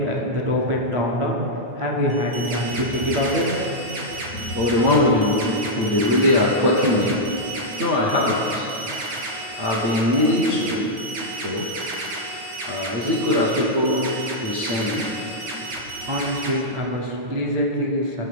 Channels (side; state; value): left; late; 9.5 ms